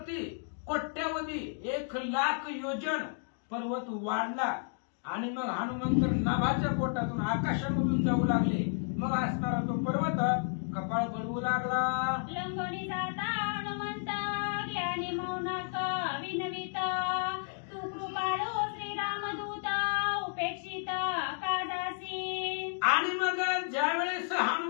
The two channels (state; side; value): silent; right; 56 dB below the other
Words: कोट्यावधी 1,00,000 योजन पर्वत वाढला. आणि मग हनुमंत नाभाच्या पोटातून आकाशामधून जाऊ लागले. मग असणारा तो पर्वत कपाळ बनवू लागला. लंगोनी जाता हनुमंत, ज्ञानी मौनाक विनविता, तू कृपाळू श्रीरामदूत, उपेक्षित काजासी. आणि मग ज्यावेळेस